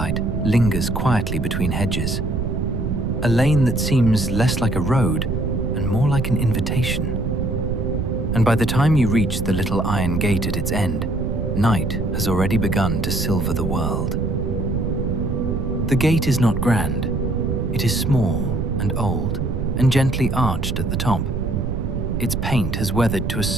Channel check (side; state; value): right; noise; rumble, 2 dB below the sound